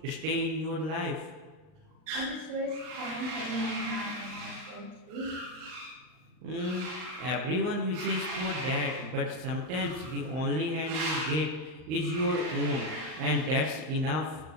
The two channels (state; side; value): late; left; 39 ms